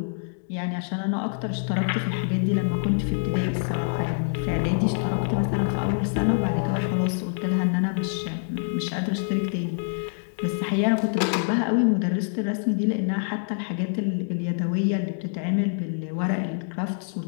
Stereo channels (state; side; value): silent; right; digital silence